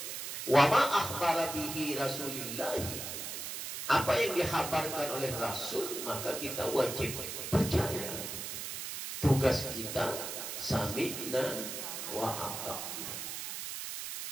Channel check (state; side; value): noise; right; hiss, 6 dB below the sound